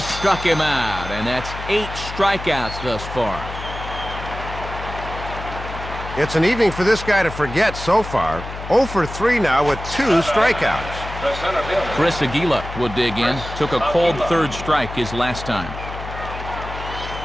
him out, and that's 8 strikeouts thus far. It's an evening for this guy to forget so far. 0 for 3 now with 2 strikeouts. Chris Aguila will dig in. Took a cold third strike his last time.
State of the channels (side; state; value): left; noise; hum, 10 dB below the sound